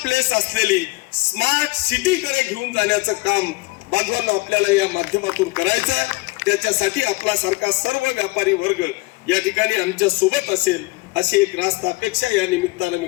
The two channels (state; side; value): quieter; right; 24.1 dB